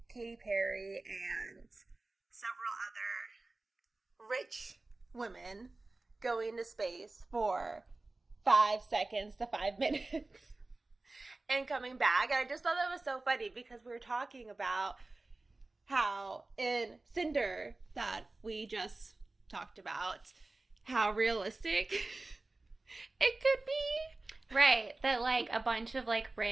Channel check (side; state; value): left; quieter; 3.2 dB